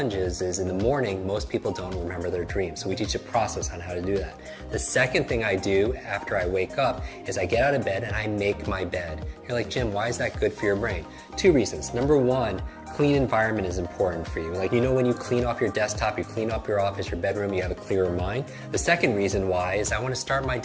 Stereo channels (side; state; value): both; identical; correlation 1.00